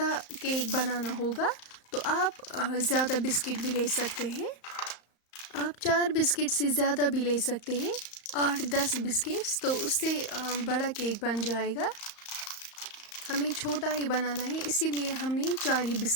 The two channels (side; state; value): right; late; 35 ms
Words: केक बनाना होगा तो आप ज़्यादा बिस्किट भी ले सकते हैं। आप 4 बिस्किट से ज़्यादा भी ले सकते हैं, 8-10 बिस्किट्स, तो उससे बड़ा केक बन जाएगा। हमें छोटा ही बनाना है, इसीलिए हमने 4 ही